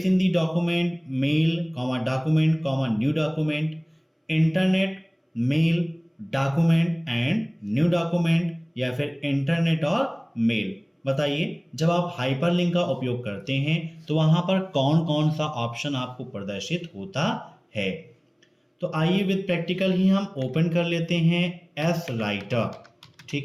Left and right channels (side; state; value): both; identical; correlation 1.00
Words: in the document, mail, document, new document. Internet, mail, document and new document या फिर internet और mail. बताइए, जब आप hyperlink का उपयोग करते हैं तो वहां पर कौन कौन सा ऑप्शन आपको प्रदर्शित होता है? तो आइए विद प्रैक्टिकल ही हम ओपन कर लेते हैं एस राइटर।